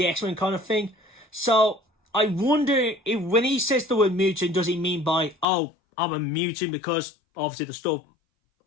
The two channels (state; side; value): drops out; right; at 5.5 s